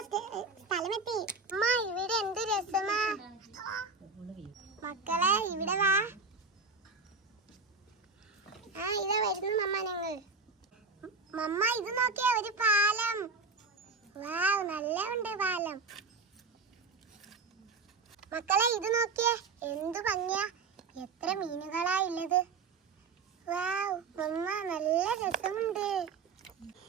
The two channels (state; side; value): quieter; left; 4.4 dB